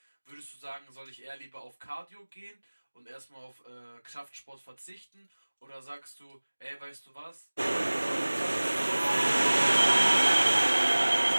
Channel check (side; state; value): both; inverted; correlation -1.00